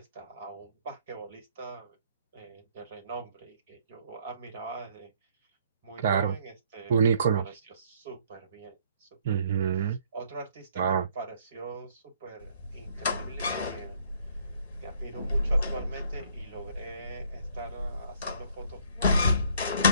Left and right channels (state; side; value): inverted; both; correlation -0.64